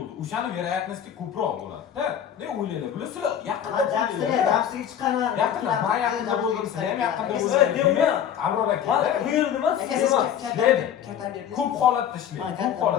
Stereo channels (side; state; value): right; quieter; 9.3 dB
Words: O'shani verayatnosti ko'proq bo'ladi-da. Ne o'ylaydi? Bular sizlar yaqinda Jamsiga chiqaman. Yaqinda, men yaqinda bo'ldim, sizlar ham yaqinda Aka, bo'ldingiz. deyman. Abror Men aka. bu yerda emas, Aka siz emas. kartani berdi. Ko'p holatda ishlaydi. Ha, Ko'p